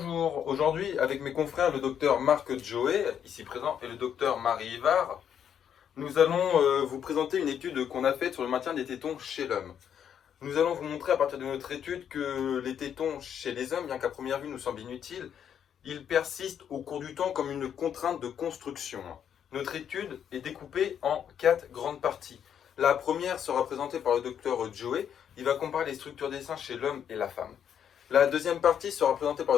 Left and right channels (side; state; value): right; quieter; 8.7 dB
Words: aujourd'hui avec mes confrères le docteur Marc Joé, ici présent, et le docteur Marie Ivar, nous allons vous présenter une étude qu'on a faite sur le maintien des tétons chez l'homme. Nous allons vous montrer à partir de notre étude que les tétons chez les hommes, bien qu'à première vue nous semblent inutiles, ils persistent au cours du temps comme une contrainte de construction. Notre étude est découpée en 4 grandes parties. La première sera présentée par le docteur Joé, il va comparer les structures des seins chez l'homme et la femme. La deuxième partie sera présentée par